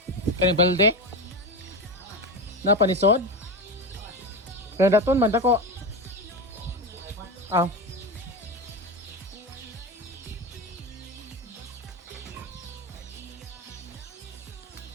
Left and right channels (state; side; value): normal; both; correlation 0.19